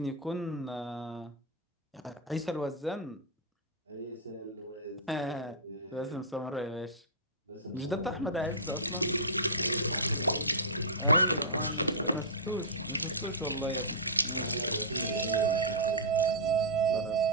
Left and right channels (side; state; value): both; normal; correlation -0.15